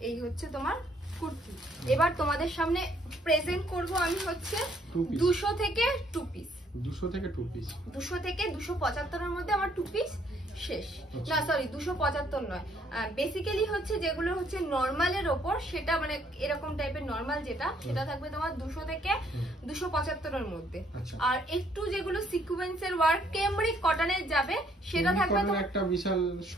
এই হচ্ছে তোমার কুর্তি। এবার তোমাদের সামনে প্রেজেন্ট করব আমি হচ্ছে 200 থেকে 2 পিস। 200 থেকে 2 পিস, 200 থেকে 275 এর মধ্যে আমার 2 পিস শেষ। না সরি 275 নয়, বেসিক্যালি হচ্ছে যেগুলো হচ্ছে নরমালের ওপর, সেটা মানে এরকম টাইপের নরমাল যেটা, সেটা থাকবে তোমার 200 থেকে 275 এর মধ্যে। আর একটু যেগুলো সিকোয়েন্সের ওয়ার্ক ক্যামরিক কটনের যাবে সেটা থাকবে তোমার একটা বিশাল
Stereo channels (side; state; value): both; normal; correlation 0.66